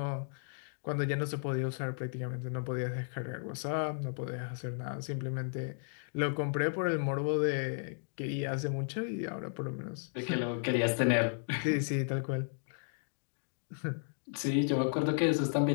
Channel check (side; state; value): right; silent; digital silence